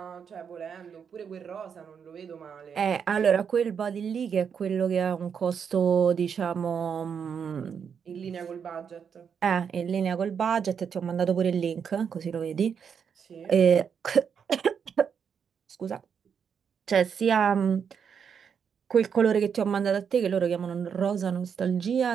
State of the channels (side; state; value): left; quieter; 7.1 dB